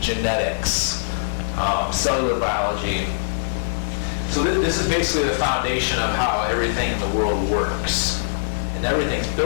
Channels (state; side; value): silent; right; 59 dB below the other